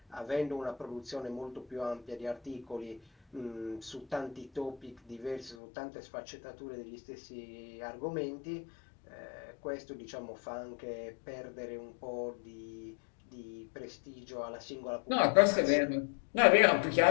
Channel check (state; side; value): drops out; right; at 5.6 s